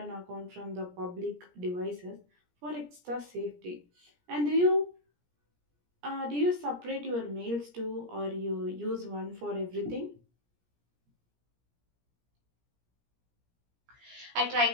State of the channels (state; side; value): late; left; 17 ms